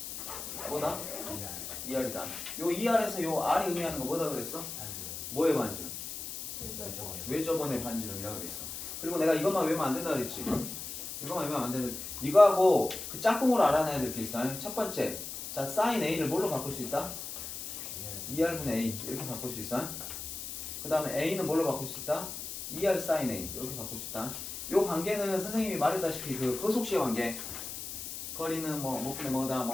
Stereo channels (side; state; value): left; noise; hiss, 8 dB below the sound